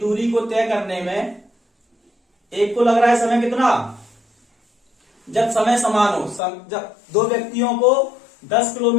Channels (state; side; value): drops out; right; at 6.4 s